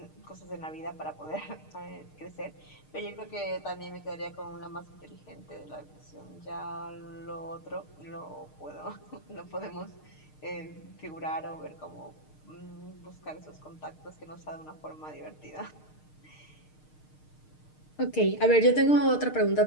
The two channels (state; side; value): late; right; 6.6 ms